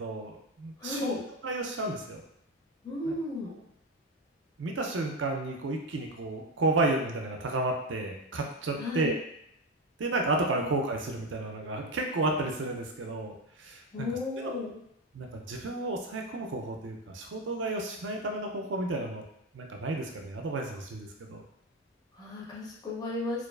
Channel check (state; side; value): normal; both; correlation 0.14